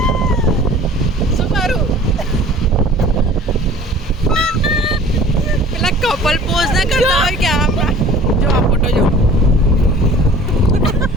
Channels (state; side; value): normal; both; correlation 0.47